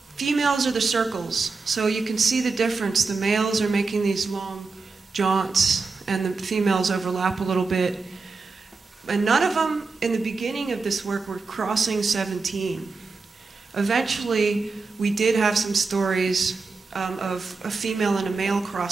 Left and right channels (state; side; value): quieter; left; 4.3 dB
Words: Females are the circles, so you can see the difference. The males are making these long jaunts, and the females overlap a little bit. And none of them, in the beginning of this work, were crossing 17. Eventually, we did have some stories of a female and a male